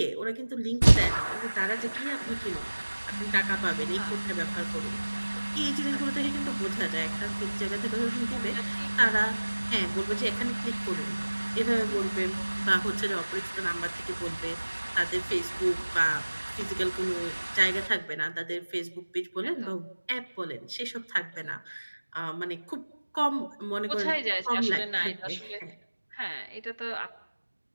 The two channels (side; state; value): both; inverted; correlation -1.00